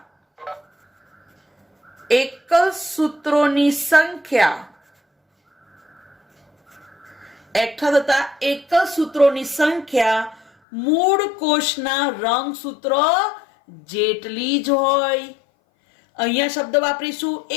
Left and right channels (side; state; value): right; drops out; at 10.5 s